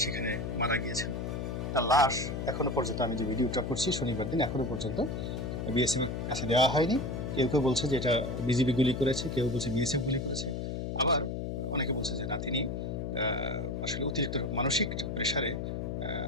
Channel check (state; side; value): noise; left; hum, 3 dB below the sound